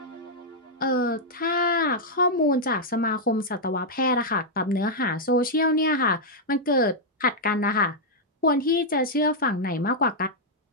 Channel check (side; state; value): both; normal; correlation -0.05